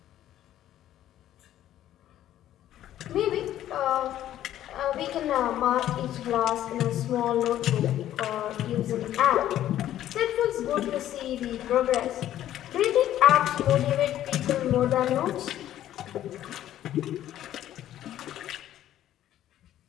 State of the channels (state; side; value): quieter; right; 12.3 dB